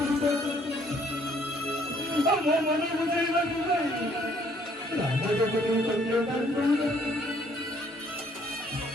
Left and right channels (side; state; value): both; normal; correlation 0.64